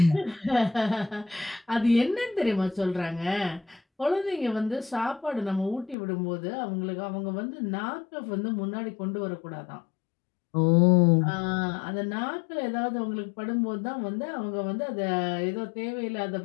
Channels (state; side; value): drops out; right; at 6.0 s